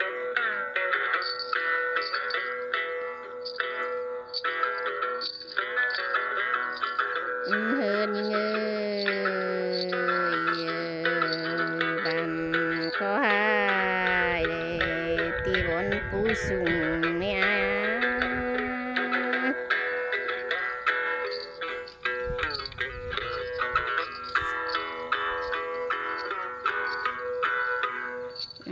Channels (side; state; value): both; identical; correlation 1.00